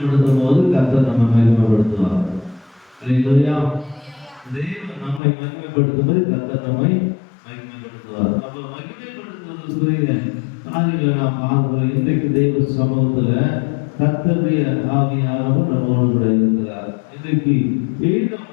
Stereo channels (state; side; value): drops out; right; at 5.2 s